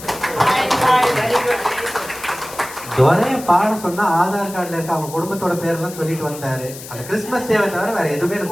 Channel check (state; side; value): noise; left; hiss, 14 dB below the sound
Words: துரைய பாட சொன்னா ஆதார் கார்டுல இருக்க அவங்க குடும்பத்தோட பேரெல்லாம் சொல்லிட்டு வந்தாரு. அந்த கிறிஸ்துமஸ் டேவை தவிர வேற எதுவுமே